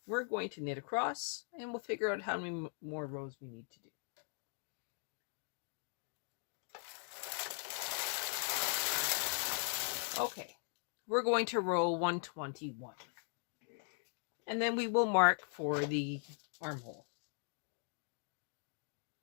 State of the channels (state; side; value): silent; right; 51 dB below the other